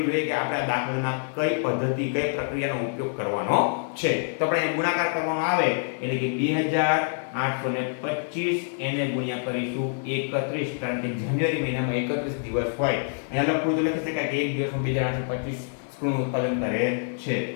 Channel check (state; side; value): silent; right; 61 dB below the other